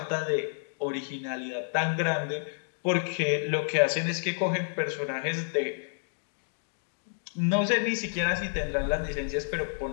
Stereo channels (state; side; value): silent; right; digital silence